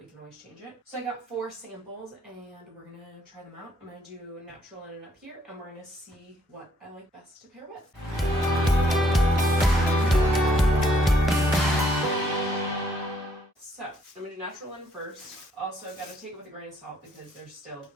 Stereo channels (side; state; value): both; normal; correlation 0.68